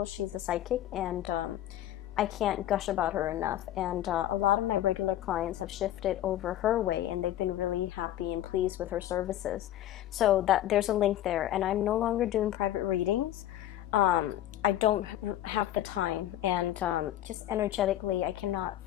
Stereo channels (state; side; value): quieter; right; 12.8 dB